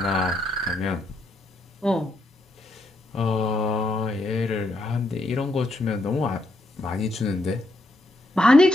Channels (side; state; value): both; normal; correlation 0.78